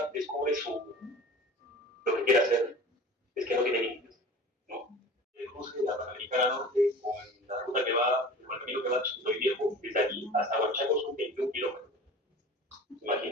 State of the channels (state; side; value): normal; both; correlation 0.40